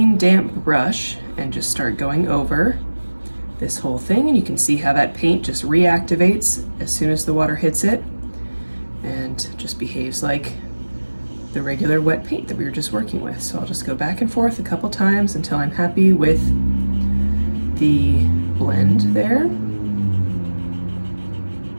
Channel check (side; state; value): both; inverted; correlation -1.00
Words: damp brush and just start going over this whole thing. And you can see how that paint just reactivates as soon as the water hits it and just behaves like the regular wet paint that we were just working with. So I'll just go back and forth a couple times until I'm happy with the blend there.